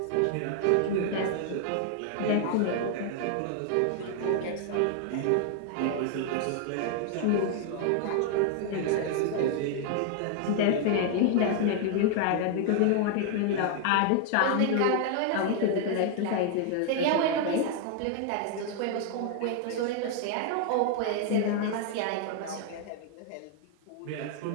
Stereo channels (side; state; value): both; different; correlation 0.00